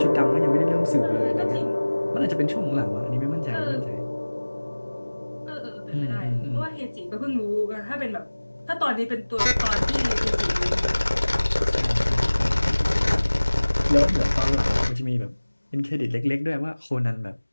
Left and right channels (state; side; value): inverted; both; correlation -1.00